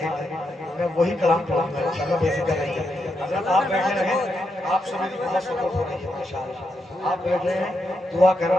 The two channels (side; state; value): both; normal; correlation 0.83